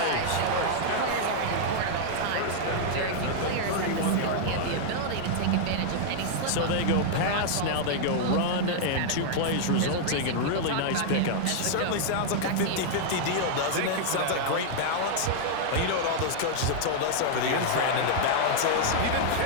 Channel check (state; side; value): different; both; correlation -0.01